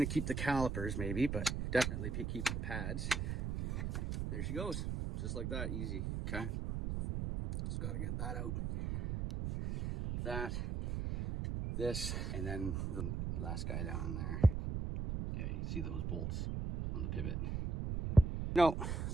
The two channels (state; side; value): noise; right; rumble, 2 dB below the sound